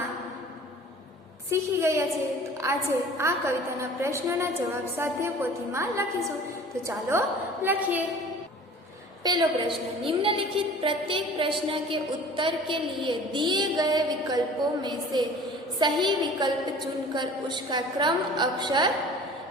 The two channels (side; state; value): both; normal; correlation 0.45